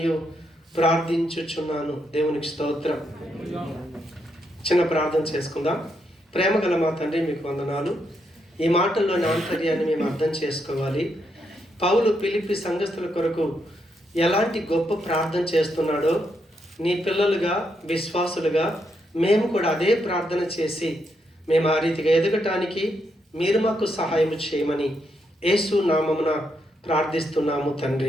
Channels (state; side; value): normal; both; correlation 0.79